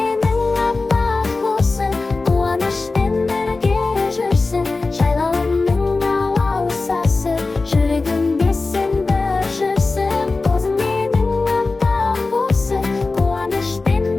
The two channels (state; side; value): quieter; right; 3.6 dB